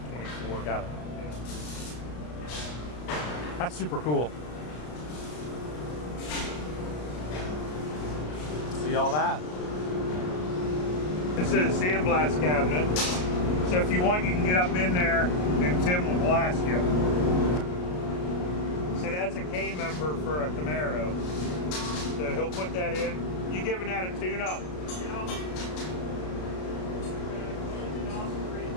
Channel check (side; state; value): right; late; 33 ms